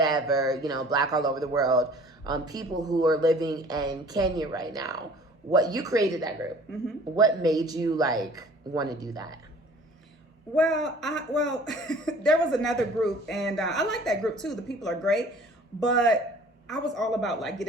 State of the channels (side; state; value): both; normal; correlation 0.49